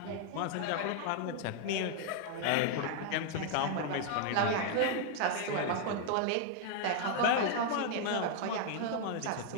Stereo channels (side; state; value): both; different; correlation 0.00